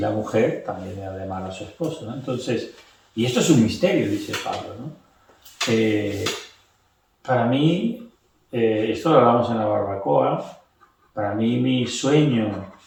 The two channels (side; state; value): both; identical; correlation 1.00